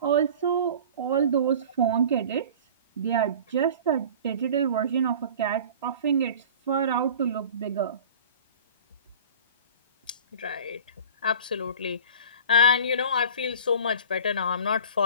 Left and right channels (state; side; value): inverted; both; correlation -0.41